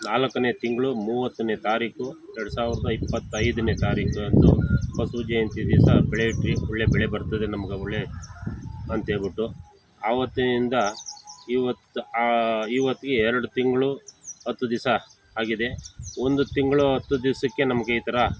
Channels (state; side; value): identical; both; correlation 1.00